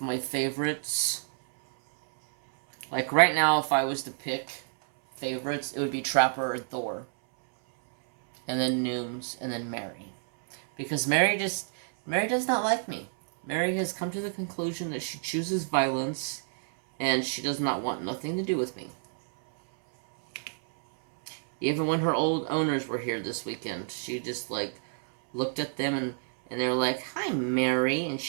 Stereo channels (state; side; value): silent; left; 59 dB below the other